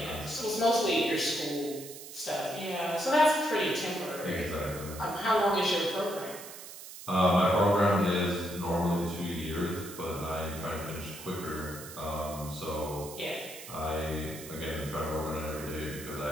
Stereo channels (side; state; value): right; noise; hiss, 13 dB below the sound